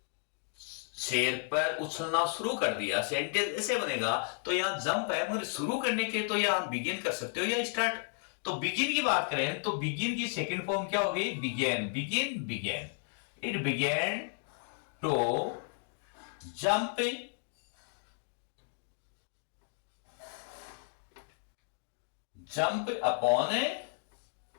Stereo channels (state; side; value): silent; right; 55 dB below the other